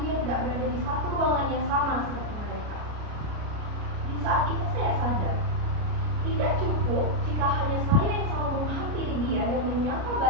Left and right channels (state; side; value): late; left; 33 ms